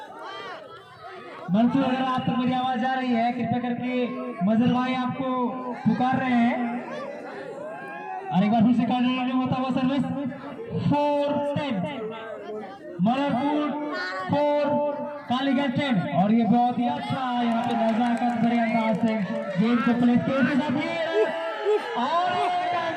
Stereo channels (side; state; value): both; identical; correlation 1.00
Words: मंसूर अगर आप तक मेरी आवाज आ रही है, कृपया करके मजल भाई आपको पुकार रहे हैं। और एक बार फिर से कार्डिनल होता हुआ सर्विस 4-10 बलरामपुर 4 कालीगंज 10। और ये बहुत ही अच्छा यहाँ पे नजाकत भरे अंदाज से गेम को प्ले के साथ और